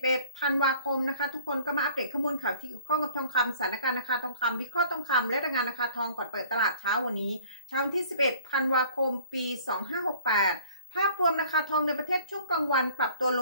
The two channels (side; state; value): both; inverted; correlation -0.51